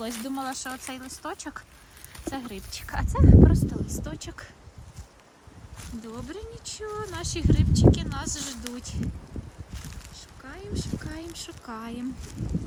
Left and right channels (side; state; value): both; identical; correlation 1.00